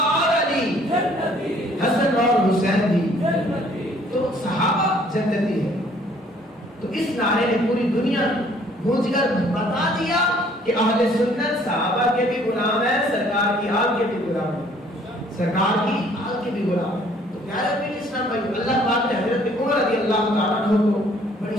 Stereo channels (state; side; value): normal; both; correlation 0.59